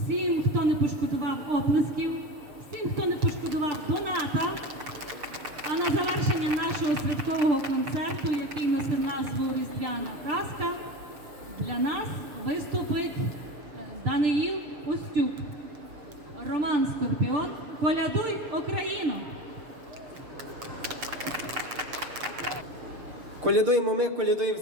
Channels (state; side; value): late; left; 6.8 ms